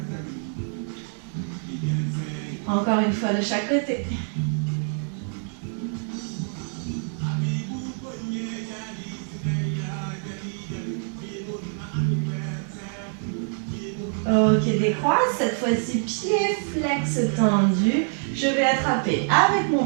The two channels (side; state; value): left; silent; 61 dB below the other